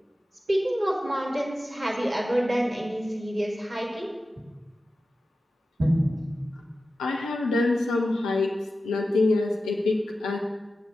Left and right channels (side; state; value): both; normal; correlation 0.93